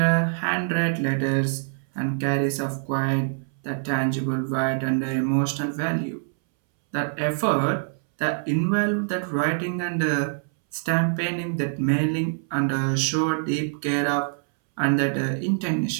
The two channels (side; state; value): left; silent; 62 dB below the other